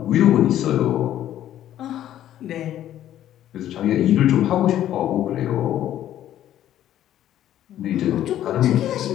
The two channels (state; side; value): quieter; right; 12.0 dB